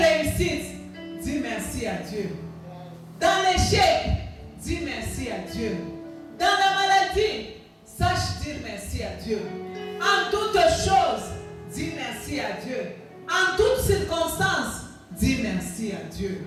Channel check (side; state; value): both; identical; correlation 1.00